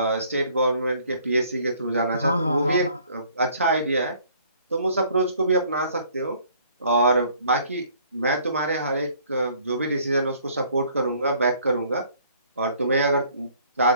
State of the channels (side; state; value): both; inverted; correlation -0.59